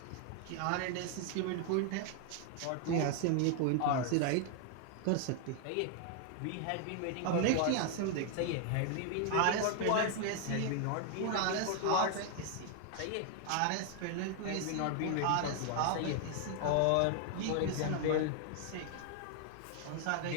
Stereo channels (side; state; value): both; different; correlation 0.00